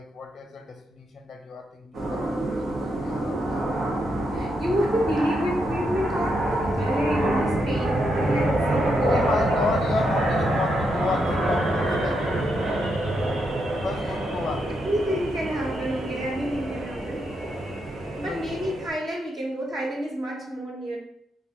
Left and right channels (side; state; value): both; normal; correlation 0.81